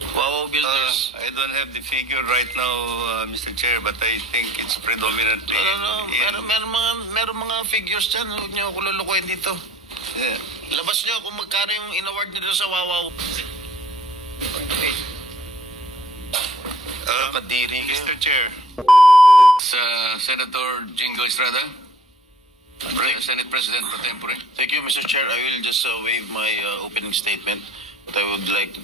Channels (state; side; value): normal; both; correlation 0.53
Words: Wawaw Builders? I don't have the figure right now, Mr. Chair, but I think it's predominantly... Meron mga figures dyan. Huwag niyo ako lulukuhin dito. Yeah. Labas niyo kung magkano yung in-award dito sa Wawaw. Kadiri kayo. Mr. Chair. Senator Jingo Estrada, Senate President pro tempore. Thank you, Mr. Chair. I will just waive my opening statement, but I would like